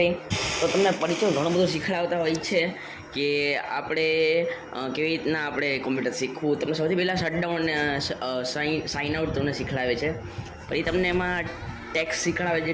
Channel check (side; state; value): both; identical; correlation 1.00